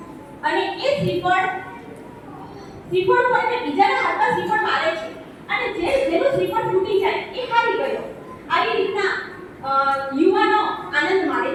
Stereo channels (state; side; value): identical; both; correlation 1.00